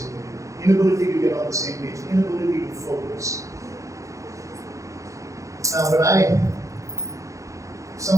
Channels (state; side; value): late; left; 0.15 ms